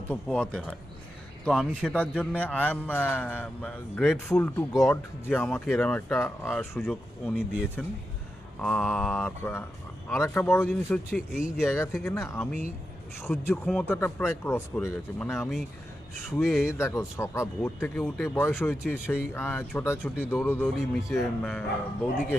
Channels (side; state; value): both; normal; correlation 0.89